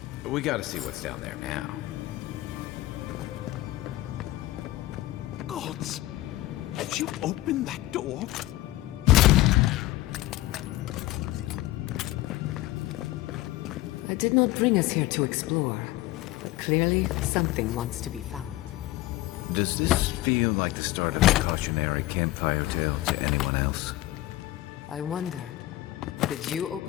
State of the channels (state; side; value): quieter; right; 16.8 dB